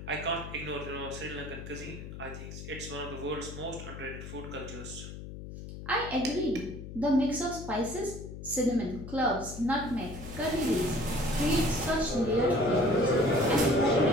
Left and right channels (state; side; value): noise; left; hum, 11 dB below the sound